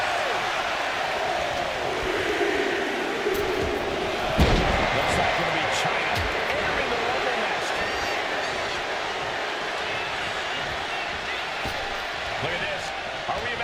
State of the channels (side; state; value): both; identical; correlation 1.00